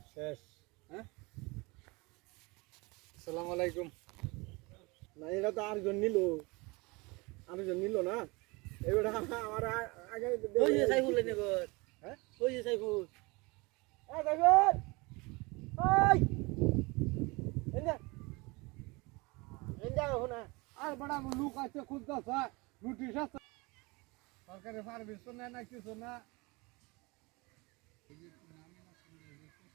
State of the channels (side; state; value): left; quieter; 25.7 dB